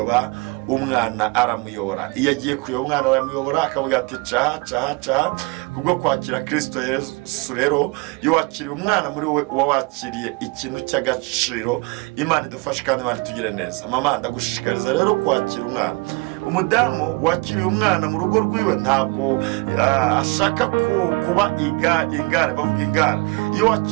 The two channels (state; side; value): quieter; left; 27.7 dB